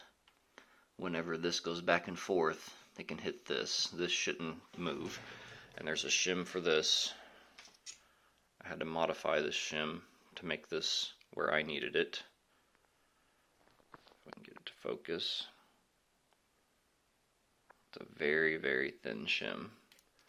whenever this goes back and forth, it can hit this. This shouldn't move. And there's a shim for this. I had to modify this shim to make this where I needed it. If I can get it to focus. It's a very, very thin shim.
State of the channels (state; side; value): identical; both; correlation 1.00